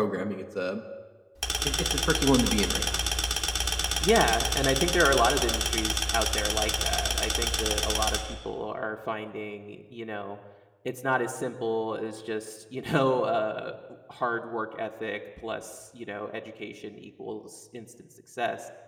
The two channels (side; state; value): both; identical; correlation 1.00